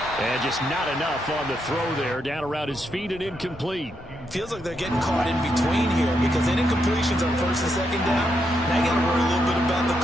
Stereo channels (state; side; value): normal; both; correlation 0.80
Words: And just not enough on the throw there. Down around his feet and incomplete. Feels like they're getting caught in between here because incompletions on 1st and 2nd down. Now you got to worry a little bit about the